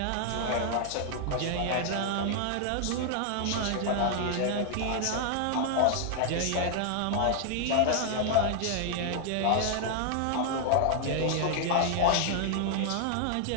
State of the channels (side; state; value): both; different; correlation 0.00